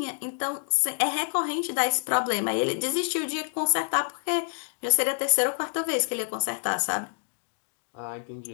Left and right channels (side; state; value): right; silent; digital silence